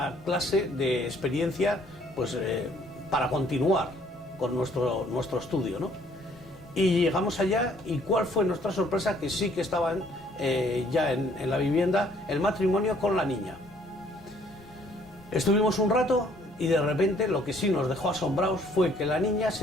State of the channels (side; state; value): both; normal; correlation 0.62